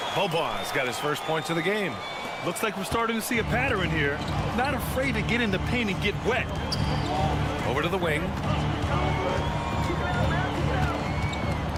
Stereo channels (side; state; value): both; identical; correlation 1.00